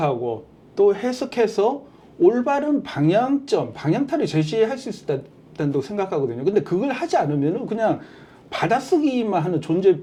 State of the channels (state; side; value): identical; both; correlation 1.00